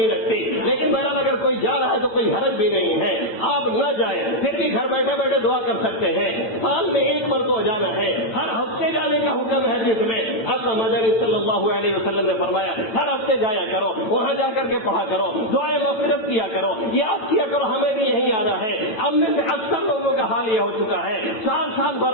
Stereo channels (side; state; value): right; late; 8.8 ms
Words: لگتی، لیکن بہرحال اگر کوئی جا رہا ہے تو کوئی حرج بھی نہیں ہے، آپ نہ جائیں، پھر بھی گھر بیٹھے بیٹھے دعا کر سکتے ہیں۔ سال میں ایک مرتبہ جانا ہے، ہر ہفتے جانے کا حکم ہے جس میں آقا مدنی صلی اللہ علیہ وسلم نے فرمایا ہر ہفتے جایا کرو، وہاں جا کر کے پڑھا کرو، دعائیں مغفرت کیا کرو، یاد کیا کرو ہمیں بھی یہی آنا ہے۔ اب میں سے اکثر لوگوں کا حال یہ ہو چکا ہے، سال